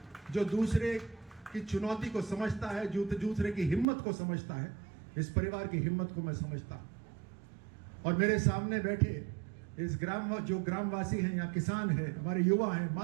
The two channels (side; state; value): left; drops out; at 3.9 s